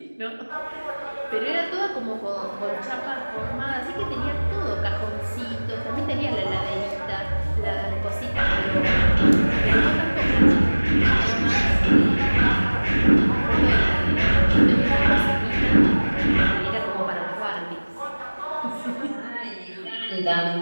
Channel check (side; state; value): both; inverted; correlation -1.00